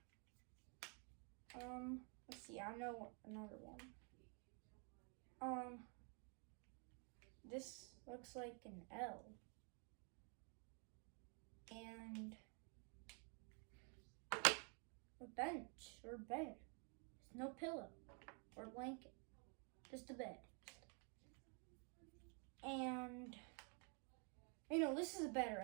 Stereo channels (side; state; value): left; quieter; 38.7 dB